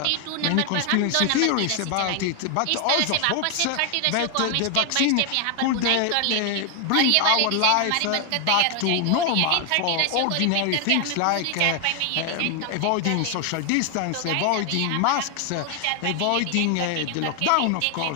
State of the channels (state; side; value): different; both; correlation 0.01